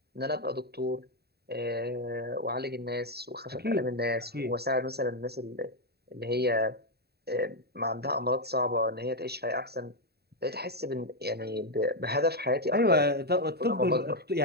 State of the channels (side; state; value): left; late; 0.47 ms